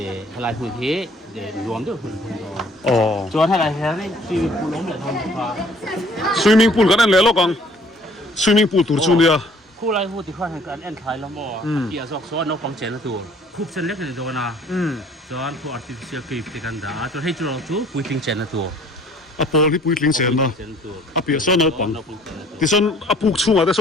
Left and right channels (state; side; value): normal; both; correlation 0.56